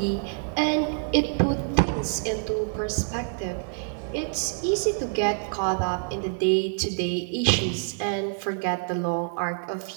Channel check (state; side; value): silent; left; 55 dB below the other